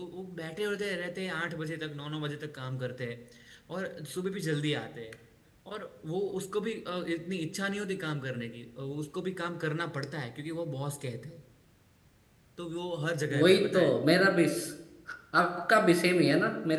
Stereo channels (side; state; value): both; identical; correlation 1.00